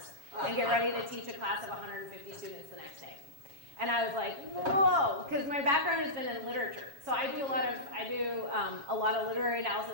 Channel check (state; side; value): late; left; 7.3 ms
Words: and get ready to teach a class of 150 students the next day. And I was like, whoa, because my background has been in literature. So I do a lot of literary